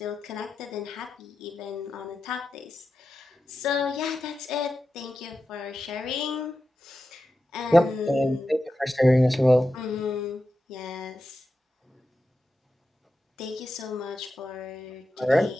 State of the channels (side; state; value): both; normal; correlation 0.91